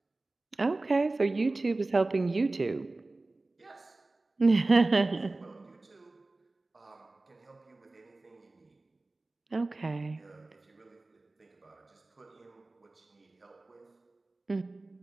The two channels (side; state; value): left; quieter; 3.1 dB